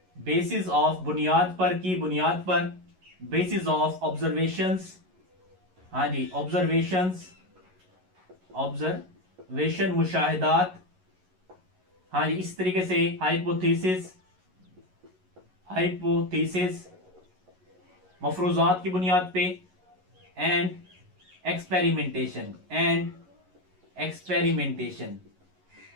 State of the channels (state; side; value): late; left; 11 ms